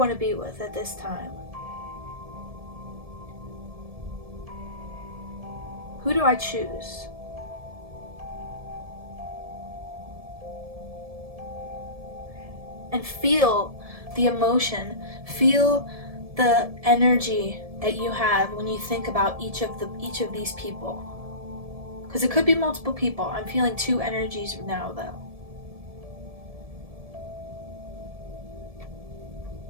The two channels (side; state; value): left; late; 1.7 ms